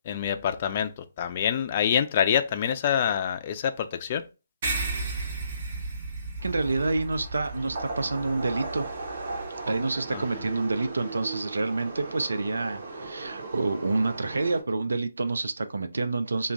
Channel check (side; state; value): both; inverted; correlation -0.75